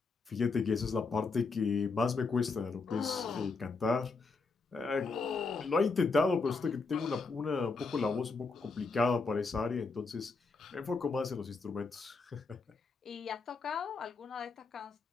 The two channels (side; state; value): right; quieter; 4.3 dB